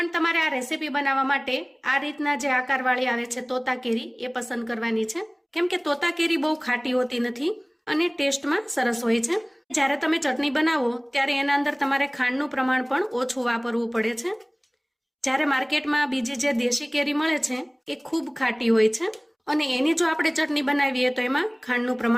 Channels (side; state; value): both; identical; correlation 1.00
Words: તમારે આ રેસીપી બનાવવા માટે આ રીતના જે આકારવાળી આવે છે તોતા કેરી એ પસંદ કરવાની છે, કેમ કે તોતા કેરી બહુ ખાટી હોતી નથી અને ટેસ્ટમાં સરસ હોય છે। જ્યારે તમે ચટણી બનાવો ત્યારે એના અંદર તમારે ખાંડનું પ્રમાણ પણ ઓછું વાપરવું પડે છે। જ્યારે માર્કેટમાં બીજી જે દેશી કેરી મળે છે એ ખૂબ ખાટી હોય છે અને એની જો આપણે ચટણી બનાવીએ તો એમાં ખાંડનું